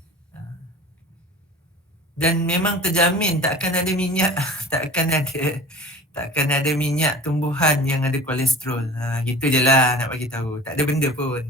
Dan memang terjamin takkan ada minyak, takkan ada minyak tumbuhan yang ada kolesterol. Gitu je lah nak bagi tahu. Tak ada benda pun.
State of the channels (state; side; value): normal; both; correlation 0.40